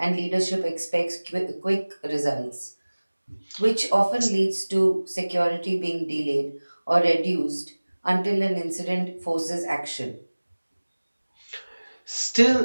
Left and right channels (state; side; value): inverted; both; correlation -1.00